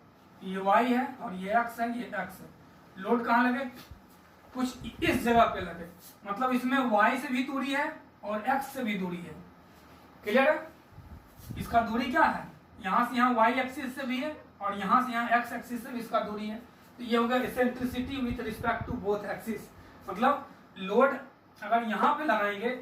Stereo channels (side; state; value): both; identical; correlation 1.00